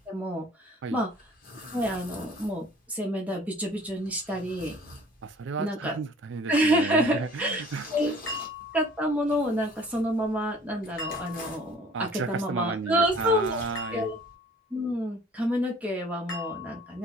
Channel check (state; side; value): normal; both; correlation 0.52